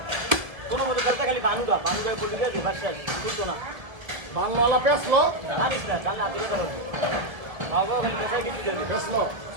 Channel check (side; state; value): left; late; 1.9 ms